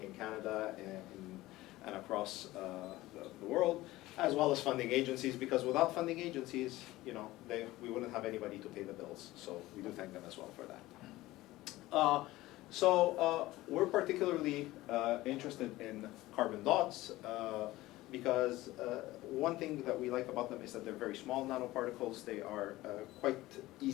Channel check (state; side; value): quieter; right; 17.7 dB